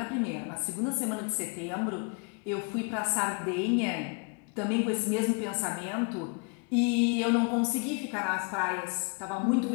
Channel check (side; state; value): right; quieter; 35.9 dB